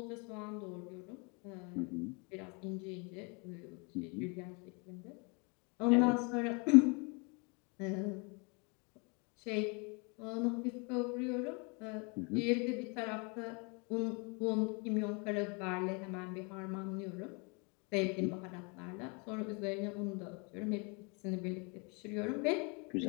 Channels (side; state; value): right; quieter; 32.7 dB